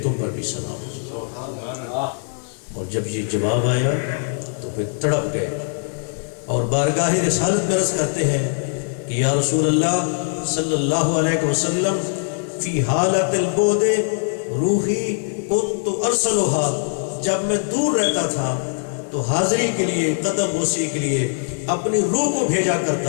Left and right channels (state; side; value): silent; right; 65 dB below the other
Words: تم پر بھی سلام ہو۔ اور جب یہ جواب آیا تو پھر تڑپ گئے اور بارگاہ رسالت میں عرض کرتے ہیں کہ یا رسول اللہ صلی اللہ علیہ وسلم، فی حالت البعد روحی کنت ارسلها، جب میں دور رہتا تھا تو حاضری کے لیے، قدم بوسی کے لیے اپنی روح کو بھیجا